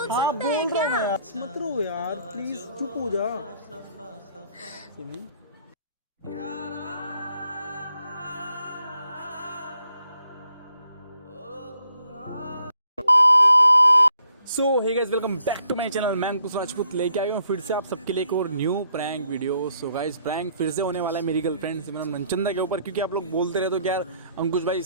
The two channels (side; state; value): both; inverted; correlation -0.70